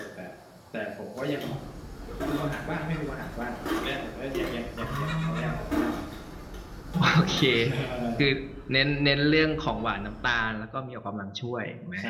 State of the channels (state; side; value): identical; both; correlation 1.00